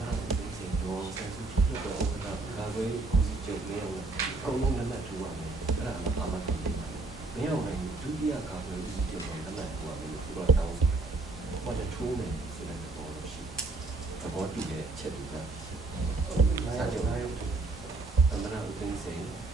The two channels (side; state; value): left; quieter; 3.4 dB